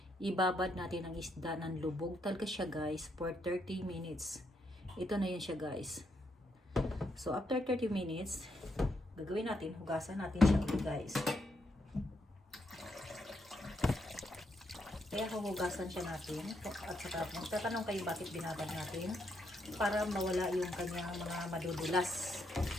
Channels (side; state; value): both; normal; correlation 0.78